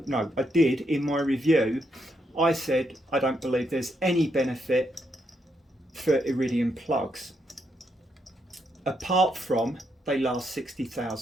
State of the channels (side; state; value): both; normal; correlation 0.78